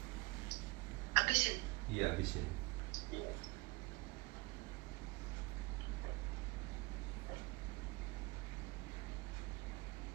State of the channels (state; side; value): quieter; left; 24.3 dB